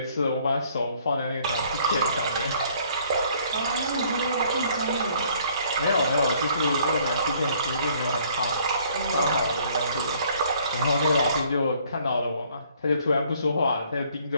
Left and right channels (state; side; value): inverted; both; correlation -0.61